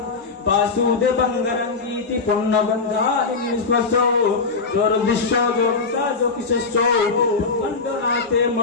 বাসুদেবঙ্গরঙ্গীতি পুণ্যগন্ধানি নিস্পর্শো দুর্দৃশ্য যোগিতা যোগিশস্য খণ্ডনাতে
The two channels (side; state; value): right; quieter; 4.4 dB